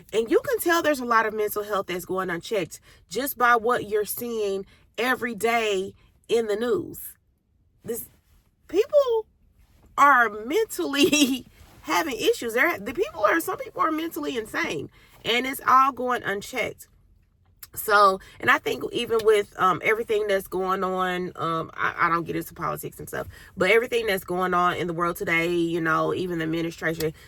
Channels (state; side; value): identical; both; correlation 1.00